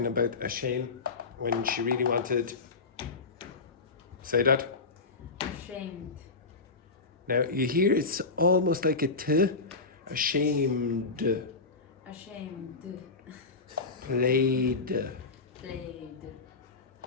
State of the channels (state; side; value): quieter; right; 4.0 dB